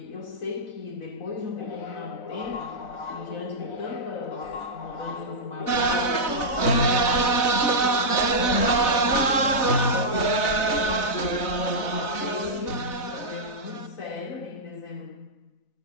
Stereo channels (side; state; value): right; late; 4.0 ms